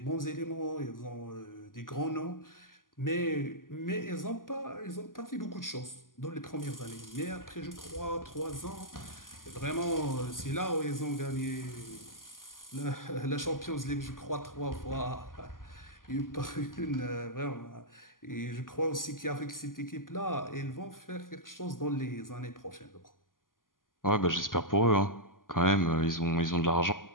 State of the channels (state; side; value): late; right; 0.90 ms